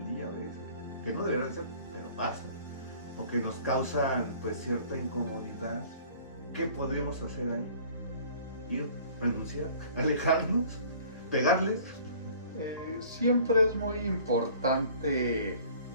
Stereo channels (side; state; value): both; inverted; correlation -0.50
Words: día a veces, que no deberían ser, pero pasa, o que nos causan pues cierta incomodidad. ¿Qué podemos hacer ahí? Ir, renunciar, alejarnos, pegarles. Siempre es muy importante